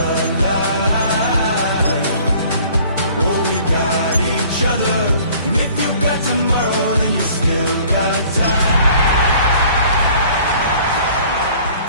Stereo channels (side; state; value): both; inverted; correlation -0.53